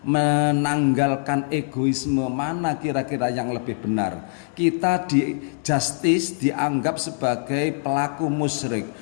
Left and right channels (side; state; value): right; silent; 60 dB below the other